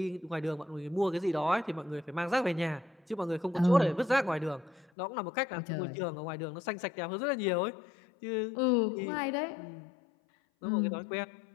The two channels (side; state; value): right; drops out; at 4.9 s